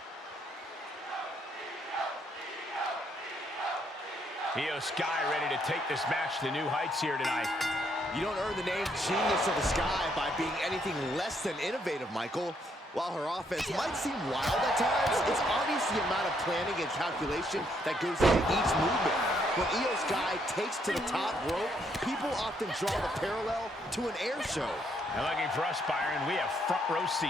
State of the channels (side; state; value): both; normal; correlation 0.72